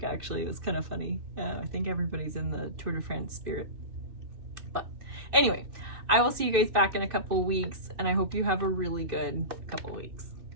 actually. It was kind of funny. I think everybody's in the Tour de France spirit. But anyway, I will see you guys back in a couple weeks, and I hope you have a really good couple weeks.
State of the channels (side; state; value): left; late; 2.5 ms